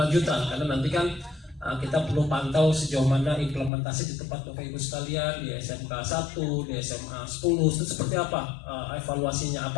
karena nanti kan kita perlu pantau sejauh mana implementasi di tempat Bapak Ibu sekalian di SMK 1, di SMA 10 itu seperti apa evaluasinya,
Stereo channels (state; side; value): drops out; right; at 3.7 s